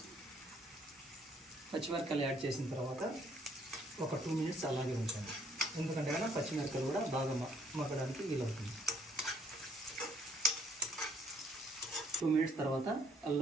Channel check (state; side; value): normal; both; correlation 0.64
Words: పచ్చిమిరపకాయలు యాడ్ చేసిన తర్వాత ఒక 2 మినిట్స్ అలాగే ఉంచండి. ఎందుకంటే కన్నా పచ్చిమిరపకాయలు కూడా బాగా మగ్గడానికి వీలవుతుంది. 2 మినిట్స్ తర్వాత